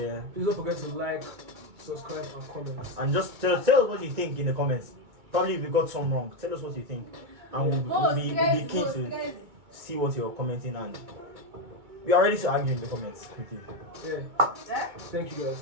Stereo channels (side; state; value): left; late; 2.2 ms